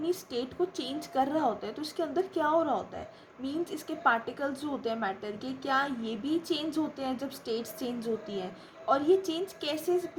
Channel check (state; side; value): identical; both; correlation 1.00